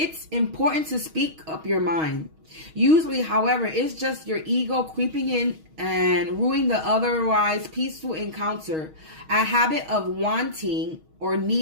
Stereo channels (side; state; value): left; late; 6.3 ms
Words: important to speak up your mind. Usually, however, it's just your ego creeping in and ruining the otherwise peaceful encounter, a habit of wanting or